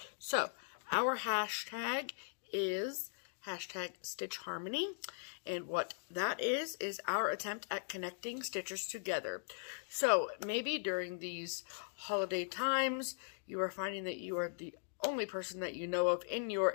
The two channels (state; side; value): silent; right; digital silence